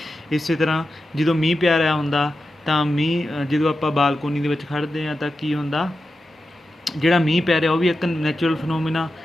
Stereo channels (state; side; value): normal; both; correlation 0.91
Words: इस तरह जो मीह पै रहा हुंदा तो मीह जो आप बालकोनी दे विच खड़दे हैं तो की हुंदा, जिहड़ा मीह पै रहा वो भी एक नैचुरल फिनोमिना,